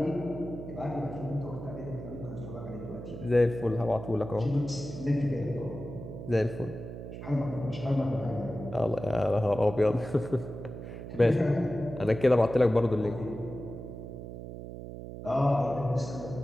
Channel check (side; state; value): right; noise; hum, 10 dB below the sound